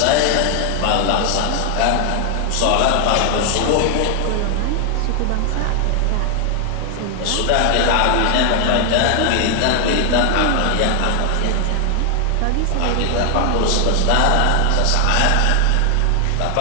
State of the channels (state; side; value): different; both; correlation 0.00